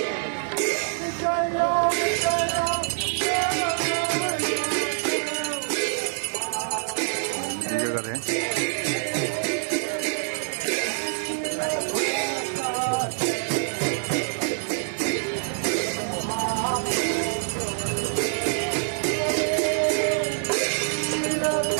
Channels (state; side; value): silent; left; 56 dB below the other